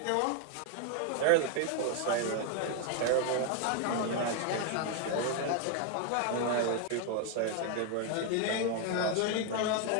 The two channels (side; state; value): both; different; correlation 0.00